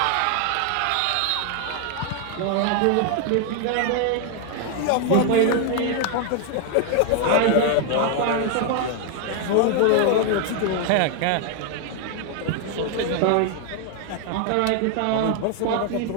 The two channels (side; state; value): both; different; correlation 0.00